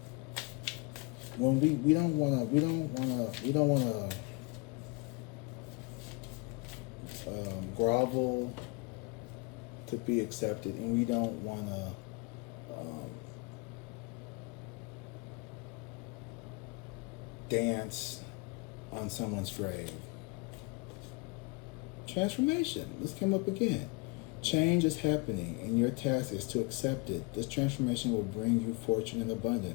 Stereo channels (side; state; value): right; quieter; 28.1 dB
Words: When we don't wanna grovel to be accepted, and we don't wanna dance on someone's grave. Transformation. This came up again. Change is happening, and your task is to accept it. This transformation will bring you fortune and